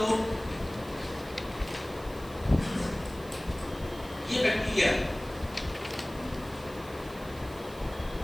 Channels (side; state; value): right; noise; hiss, 20 dB below the sound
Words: ये बैक्टीरिया है,